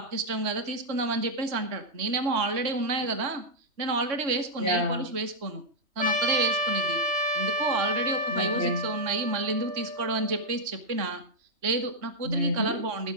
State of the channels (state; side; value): late; left; 3.2 ms